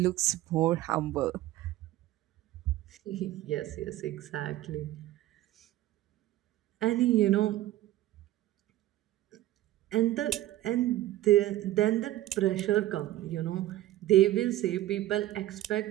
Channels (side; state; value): left; quieter; 15.0 dB